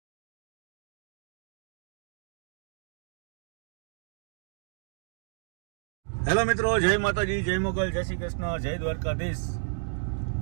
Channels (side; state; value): left; silent; digital silence